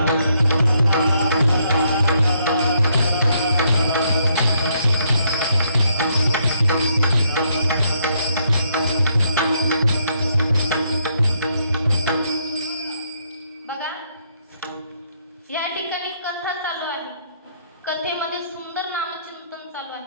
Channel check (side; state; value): both; inverted; correlation -0.72